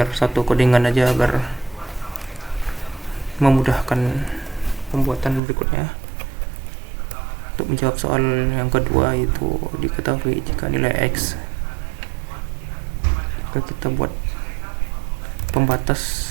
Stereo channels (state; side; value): drops out; left; at 5.4 s